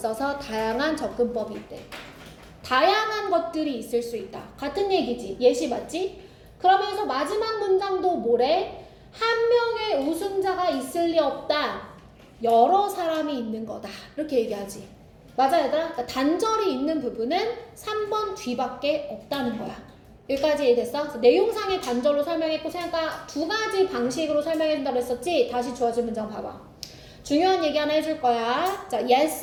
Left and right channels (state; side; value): identical; both; correlation 1.00